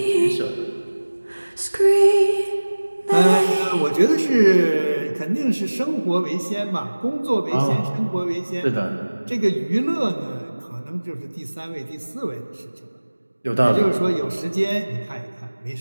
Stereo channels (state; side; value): inverted; both; correlation -1.00